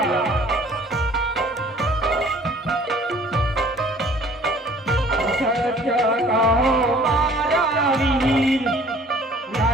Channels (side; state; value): both; normal; correlation 0.53